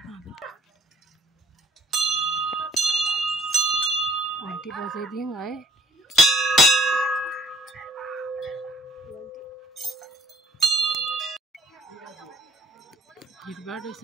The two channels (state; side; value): normal; both; correlation 0.59